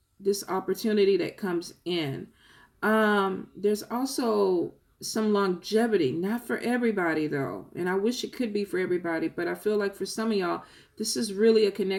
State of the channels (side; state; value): both; identical; correlation 1.00